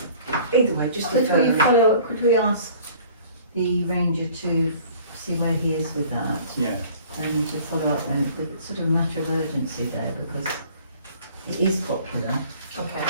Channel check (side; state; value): both; inverted; correlation -0.50